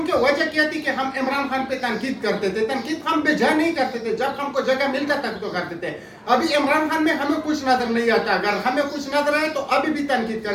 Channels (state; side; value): identical; both; correlation 1.00